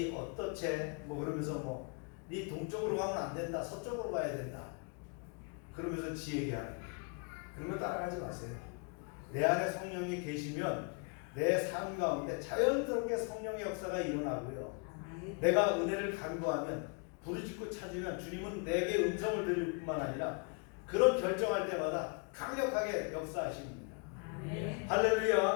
어떠채? 그러면서 니 동쪽으로 가면 안 된다. 서쪽으로 가야 된다. 그러면서 지 얘기하는. 그러면 따라가지 마세요. 내 안에 성령이 계시면 내 삶 가운데 자연스럽게 성령의 역사가 일어나고요. 내가 은혜를 간구하면, 부르짖고 찾으면 주님은 내게 음성을 들을 뿐만 아니라 그런 결정할 때마다 강력하게 역사하십니다.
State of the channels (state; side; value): quieter; right; 36.1 dB